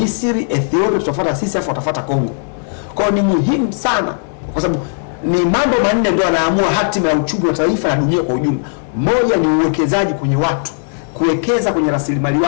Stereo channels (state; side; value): silent; right; 69 dB below the other